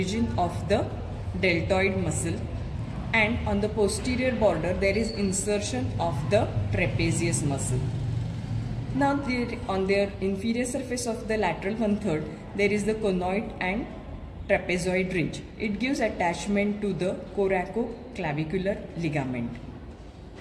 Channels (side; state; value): both; identical; correlation 1.00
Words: of the deltoid muscle and on the posterior border there is insertion of the trapezius muscle. Now on their inferior surface of the lateral 1/3 there is the conoid and trapezoid ridge. It gives attachment to the coracoclavicular ligament.